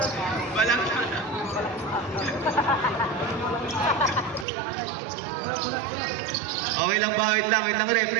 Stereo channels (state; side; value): drops out; left; at 4.5 s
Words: Walang okay lang ba? Wait lang ref.